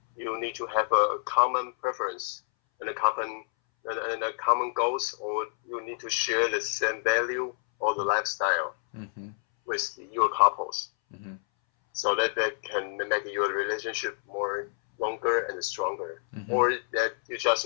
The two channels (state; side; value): silent; right; 59 dB below the other